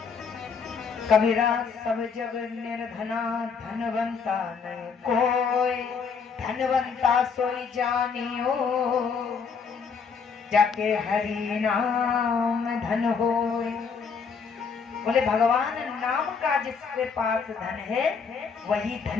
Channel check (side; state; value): right; quieter; 5.8 dB